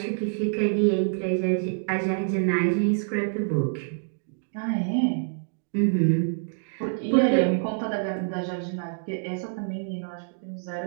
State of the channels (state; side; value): silent; left; digital silence